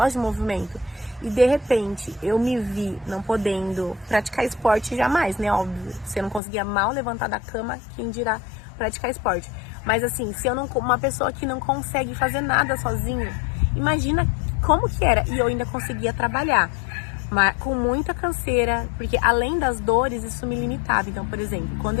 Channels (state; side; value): drops out; right; at 6.4 s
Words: de movimento. E de repente, eu me vi não podendo praticar esporte jamais, né? Óbvio, você não conseguia mal levantar da cama, quem dirá praticar esporte. Mas assim, se eu não, uma pessoa que não consegue fazer nada sozinha, imagina como que era. E eu ainda conseguia trabalhar, mas com muita canseira, porque além das dores, isso me limitava. Então, por exemplo, quando